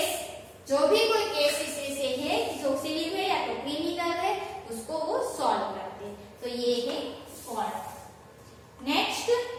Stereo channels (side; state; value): both; identical; correlation 1.00